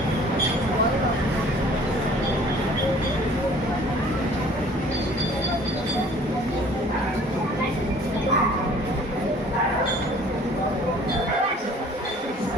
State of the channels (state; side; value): normal; both; correlation 0.52